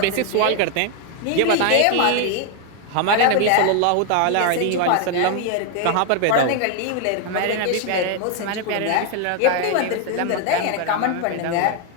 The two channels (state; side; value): different; both; correlation 0.01